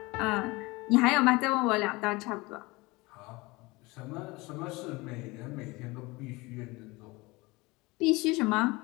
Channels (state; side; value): quieter; right; 23.2 dB